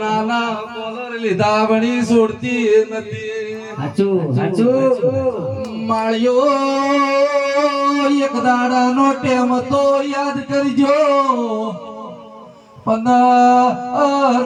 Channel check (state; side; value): identical; both; correlation 1.00